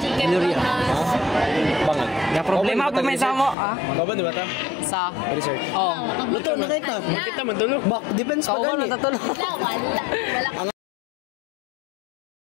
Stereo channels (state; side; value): drops out; right; at 3.6 s